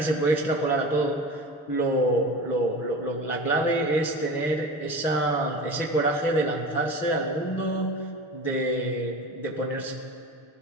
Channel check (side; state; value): right; late; 6.7 ms